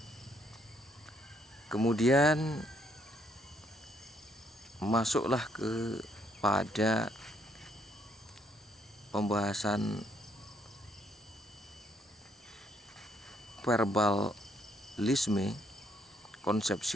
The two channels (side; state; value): both; normal; correlation 0.70